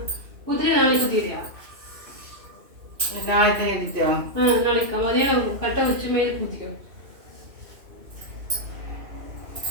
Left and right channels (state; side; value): late; left; 2.5 ms